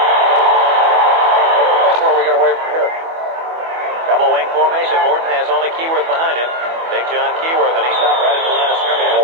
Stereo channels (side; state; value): left; late; 24 ms